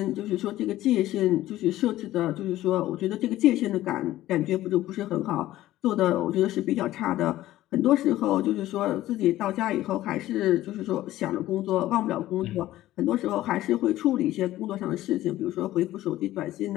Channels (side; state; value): right; quieter; 14.9 dB